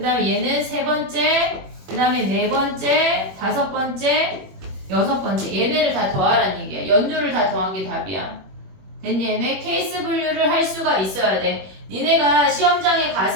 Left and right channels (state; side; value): late; left; 21 ms